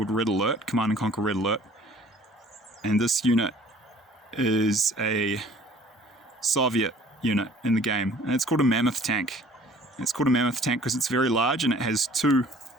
Red Alert, Command and Conquer Red Alert. And this unit is a Soviet unit in the game, and it's called a Mammoth Tank. It's called a Mammoth Tank because it's very large, and it has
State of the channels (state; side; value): normal; both; correlation 0.52